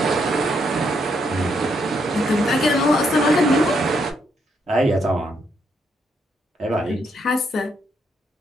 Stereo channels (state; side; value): normal; both; correlation 0.76